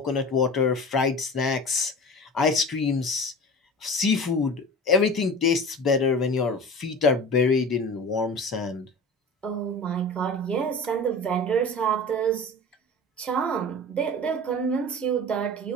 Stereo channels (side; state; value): both; normal; correlation 0.36